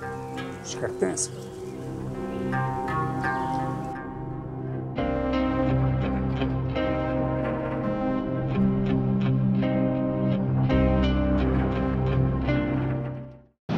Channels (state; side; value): identical; both; correlation 1.00